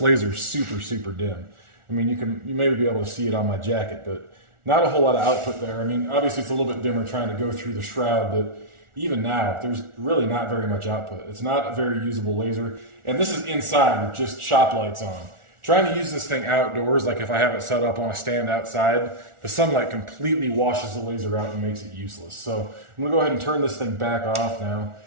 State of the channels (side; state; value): left; late; 1.4 ms